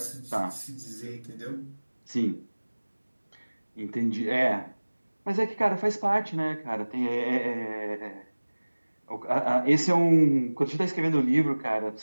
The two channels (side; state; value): both; inverted; correlation -1.00